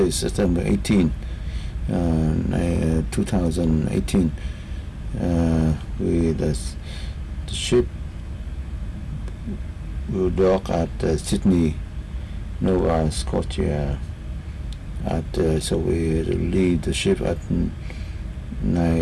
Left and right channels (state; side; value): identical; both; correlation 1.00